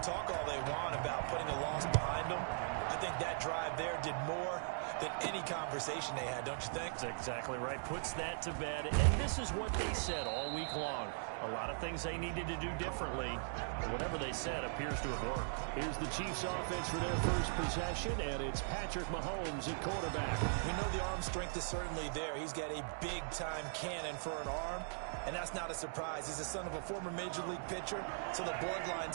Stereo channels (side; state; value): left; silent; digital silence